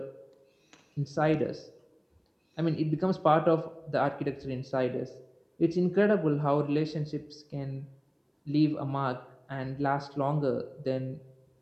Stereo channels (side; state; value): both; identical; correlation 1.00